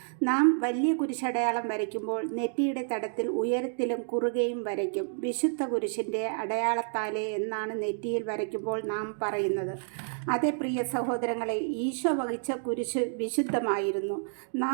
നാം വലിയ കുരിശടയാളം വരയ്ക്കുമ്പോൾ നെറ്റിയുടെ തടത്തിൽ ഉയരത്തിലും കുറുകയും വരയ്ക്കും. വിശുദ്ധ കുരിശിൻ്റെ അടയാളത്താലേ എന്നാണ് നെറ്റിയിൽ വരയ്ക്കുമ്പോൾ നാം പറയുന്നത്. അതേ പ്രിയ സഹോദരങ്ങളെ, ഈശോ വഹിച്ച കുരിശ് വിശുദ്ധമായിരുന്നു.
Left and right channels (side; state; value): left; silent; digital silence